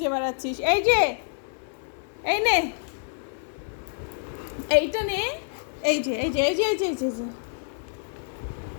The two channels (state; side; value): silent; right; 59 dB below the other